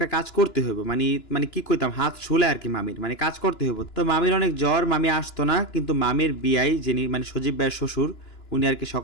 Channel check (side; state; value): right; late; 2.9 ms